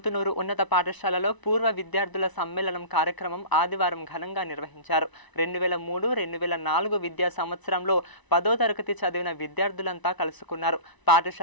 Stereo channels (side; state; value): right; late; 1.0 ms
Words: ఉన్నత పాఠశాలలో పూర్వ విద్యార్థుల సమ్మేళనం కార్యక్రమం ఆదివారం ఘనంగా నిర్వహించారు. 2003-2004 విద్యా సంవత్సరంలో 10వ తరగతి చదివిన విద్యార్థులంతా కలుసుకున్నారు.